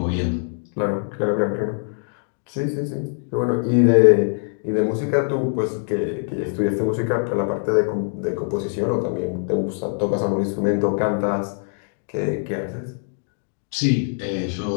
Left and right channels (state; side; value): silent; right; digital silence